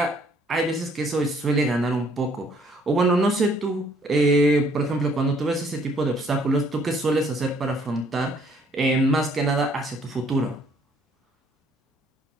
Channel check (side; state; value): both; normal; correlation 0.63